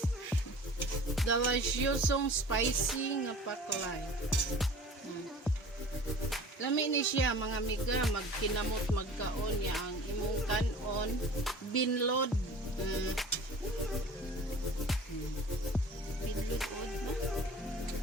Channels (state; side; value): normal; both; correlation 0.43